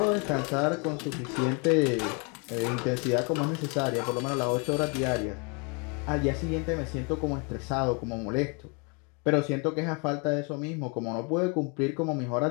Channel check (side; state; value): right; quieter; 33.8 dB